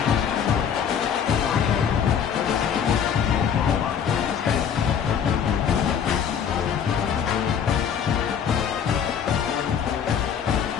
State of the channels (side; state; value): right; quieter; 7.9 dB